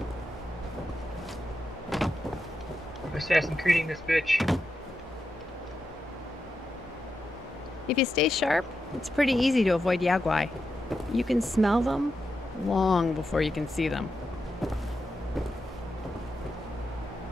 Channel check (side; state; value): both; normal; correlation 0.87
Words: Assassin creating this bitch. If you stay sharp, it's pretty easy to avoid Yaguai. You can smell them long before you can see them.